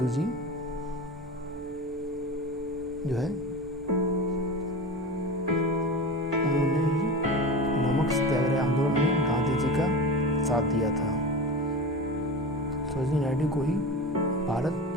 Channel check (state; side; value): normal; both; correlation 0.28